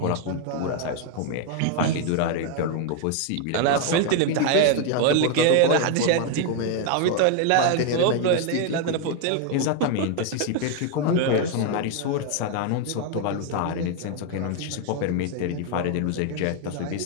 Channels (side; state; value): both; different; correlation 0.00